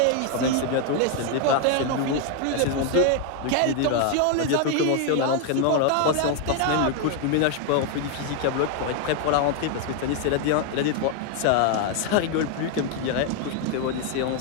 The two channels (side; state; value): both; different; correlation 0.01